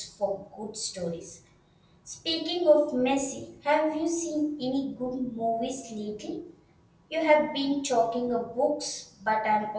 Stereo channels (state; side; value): identical; both; correlation 1.00